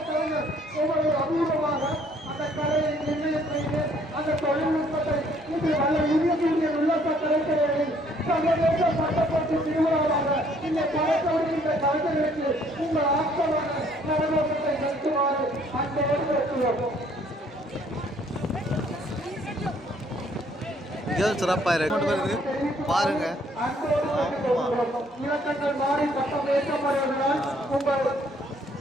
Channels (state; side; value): normal; both; correlation 0.63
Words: கலைஞர் ஒவ்வொரு அபூர்வமாக அந்த கலையை நிர்ணயம் செய்து அந்த தொழில்நுட்பத்தை இது வல்ல யூனியன் உல்லாச கலைஞர்களின் சர்வதேச பட்டப்பட்டு திருவிழாவாக இந்த படத்தோடு கலைஞர்களுக்கு உங்கள் ஆக்கமான நலநோக்கத்தை நடத்துமாறு அன்போடு கேட்டுள்ளோம். சிறப்பாக இருக்கு பாருங்க. இலக்கங்கள் மாறி பட்டம் ஏற்றப்படுவதனால் உங்கள்